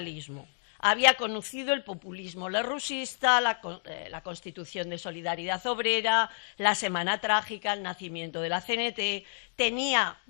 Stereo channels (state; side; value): silent; right; digital silence